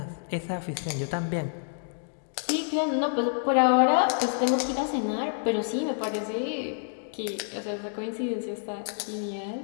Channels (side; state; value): right; silent; digital silence